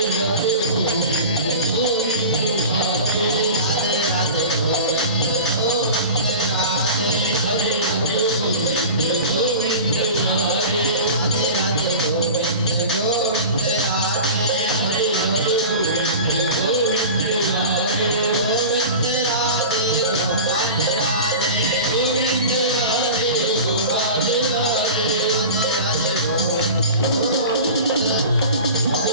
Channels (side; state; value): both; inverted; correlation -0.34